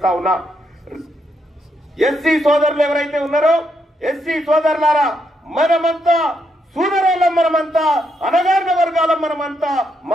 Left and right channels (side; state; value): both; normal; correlation 0.78